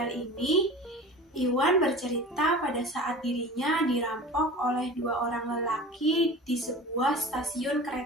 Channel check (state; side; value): normal; both; correlation 0.36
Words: ini, Iwan bercerita pada saat dirinya dirampok oleh dua orang lelaki di sebuah stasiun